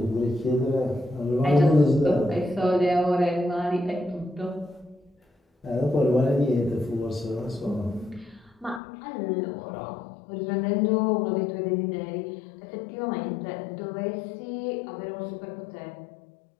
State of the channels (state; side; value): drops out; right; at 8.8 s